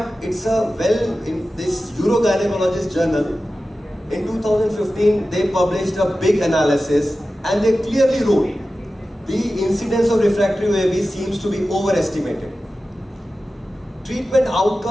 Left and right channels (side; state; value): both; normal; correlation 0.94